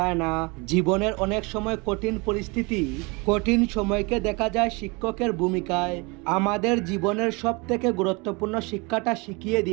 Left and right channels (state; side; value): quieter; left; 28.1 dB